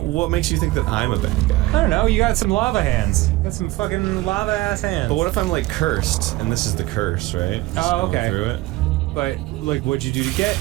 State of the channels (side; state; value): left; quieter; 18.4 dB